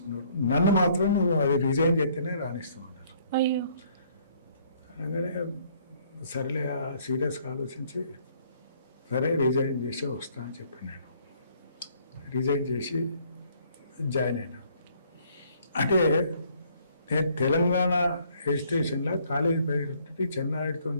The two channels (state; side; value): inverted; both; correlation -0.63